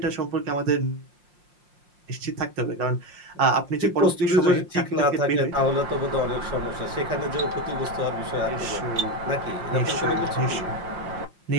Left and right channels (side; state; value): left; late; 5.6 ms